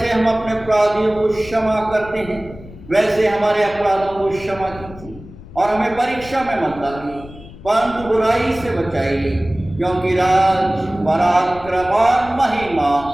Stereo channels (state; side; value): noise; left; rumble, 17 dB below the sound